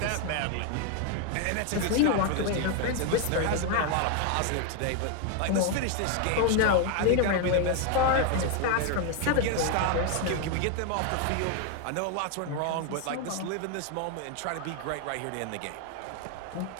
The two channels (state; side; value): different; both; correlation 0.01